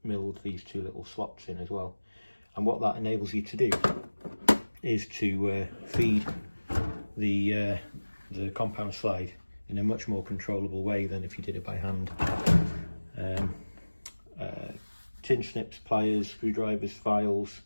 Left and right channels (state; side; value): inverted; both; correlation -1.00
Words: milled these 2 little slots in as well. And what that enables you to do is to feed the compound slide in a much more controllable way than if you did it by hand. Tin snips, pliers, screwdrivers, files,